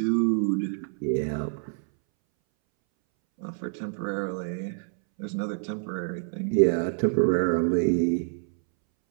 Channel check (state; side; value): silent; left; 60 dB below the other